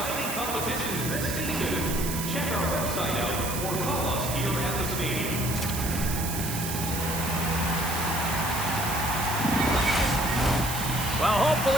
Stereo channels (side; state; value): right; noise; hiss, 5 dB below the sound